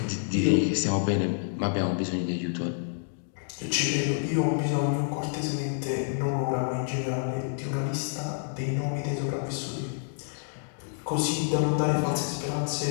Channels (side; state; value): right; silent; digital silence